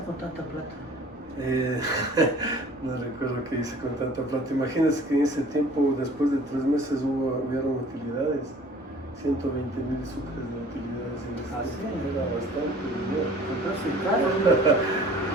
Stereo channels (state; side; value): normal; both; correlation 0.49